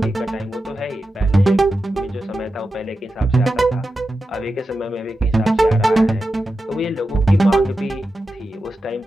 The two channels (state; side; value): normal; both; correlation 0.91